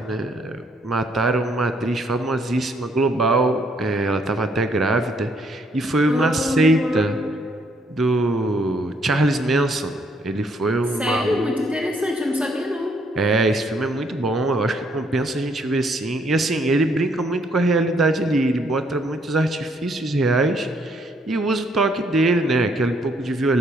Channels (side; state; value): both; normal; correlation 0.69